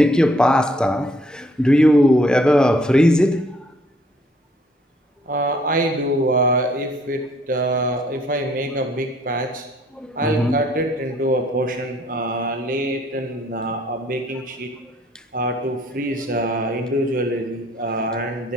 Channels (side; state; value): both; normal; correlation 0.63